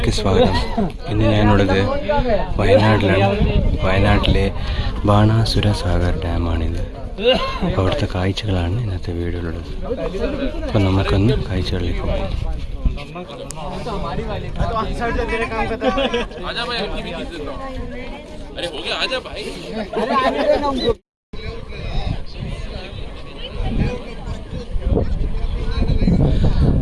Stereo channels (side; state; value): both; identical; correlation 1.00